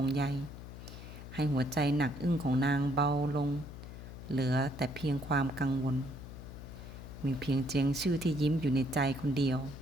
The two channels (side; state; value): left; noise; hum, 12 dB below the sound